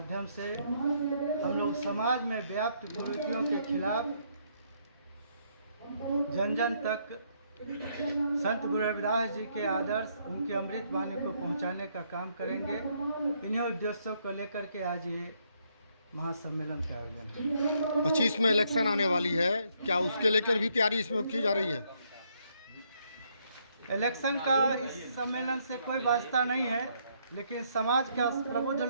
से हम लोग समाज में व्याप्त कुरीतियों के खिलाफ जन जन तक संत गुरु रविदास जी के आदर्श, उनके अमृत वाणी को पहुंचाने का काम करेंगे। इन्हीं उद्देश्यों को लेकर के आज ये महासम्मेलन का आयोजन है। 25 में इलेक्शन आने वाली है, क्या उसके लेकर भी तैयारी इसमें की जा रही है? इलेक्शन का इस सम्मेलन से कोई वास्ता नहीं है, लेकिन समाज के प्रबुद्ध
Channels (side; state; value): both; inverted; correlation -0.72